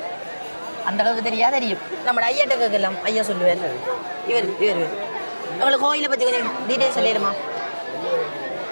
அந்த அளவுக்கு தெரியும். நம்ம ஐயாட்ட கேட்கலாம், ஐயா சொல்லுவார். இவர் உங்களுக்கு கோயிலை பற்றி கொஞ்சம் டீட்டெயில் சொல்லிடுமா?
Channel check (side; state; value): both; inverted; correlation -1.00